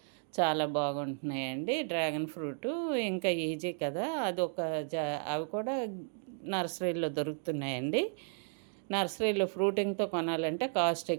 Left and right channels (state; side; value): silent; left; 55 dB below the other